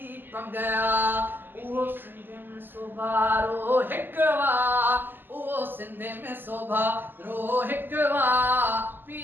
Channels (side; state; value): left; late; 0.093 ms